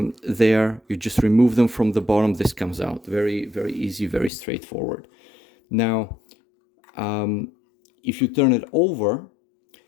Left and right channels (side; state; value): right; drops out; at 4.3 s